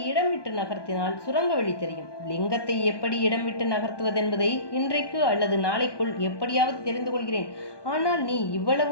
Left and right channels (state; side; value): late; right; 1.2 ms